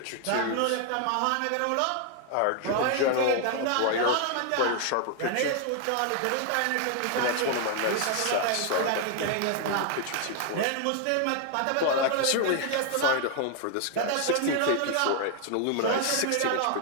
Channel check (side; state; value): both; different; correlation 0.00